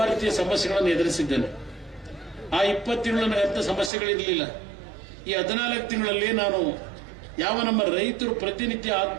ರೀತಿಯ ಸಮಸ್ಯೆಗಳನ್ನು ಎದುರಿಸಿದ್ದೇನೆ. ಆ 20 ತಿಂಗಳು ನನಗೆ ಅಂಥ ಸಮಸ್ಯೆಗಳಿರಲಿಲ್ಲ. ಈ 14 ತಿಂಗಳಲ್ಲಿ ನಾನು ಯಾವ ನಮ್ಮ ರೈತರು ಪ್ರತಿನಿತ್ಯ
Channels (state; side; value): drops out; left; at 3.9 s